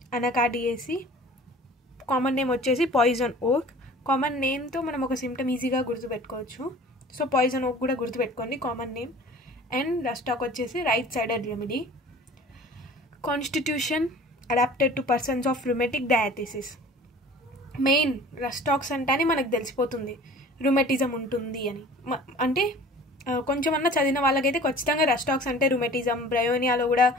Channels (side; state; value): both; normal; correlation 0.45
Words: అనకాడియేసి, కామన్ నేమ్ వచ్చేసి పాయిజన్ ఓక్. కామన్ నేమ్తో మనం ఒక సిమ్టమ్ ఈజీగా గుర్తుపెట్టుకోవచ్చు. సో పాయిజన్ ఓక్ కూడా గుర్తుపెట్టుకోండి common name. And rhus tox వచ్చేసి right sided remedy. Constitution adapted to persons of rheumatic diathesis. Main rhus tox అంటేనే మనకు తెలిసిపోతుంది రుమెటిజం ఉంటుంది అని. అంటే కొంచెం అన్నా చదివిన వాళ్ళకైతే ఖచ్చితంగా రష్ టాక్స్ అంటే రుమెటిజం, బ్రయోనియాలో కూడా